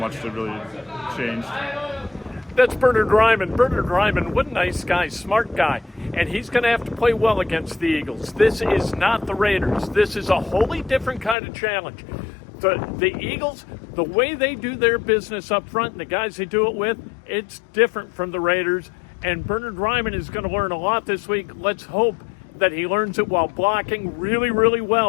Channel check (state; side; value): drops out; right; at 11.4 s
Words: it really changed. That's Bernhard Raimann. Bernhard Raimann, what a nice guy, smart guy. And he's going to have to play well against the Eagles. This is not the Raiders. This is a wholly different kind of challenge. The Eagles, the way they do their business up front and the guys they do it with, it's different from the Raiders. And Bernhard Raimann is going to learn a lot this week. Let's hope that he learns it while blocking really, really